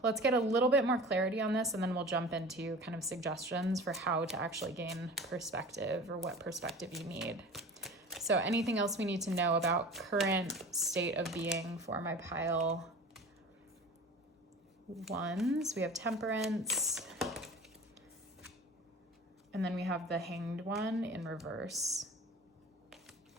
let's get a little bit more clarity on this, and then we'll jump into kind of suggestions for how to actually gain perspective, or what perspective you need. So anything else we need to know about current state of being for my pile ones? We have Temperance, and then we have the Hanged One in reverse,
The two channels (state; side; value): normal; both; correlation 0.39